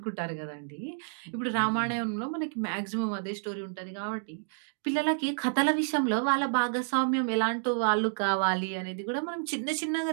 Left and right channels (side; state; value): left; silent; digital silence